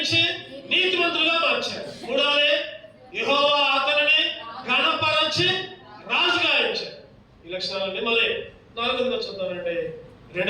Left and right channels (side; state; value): both; identical; correlation 1.00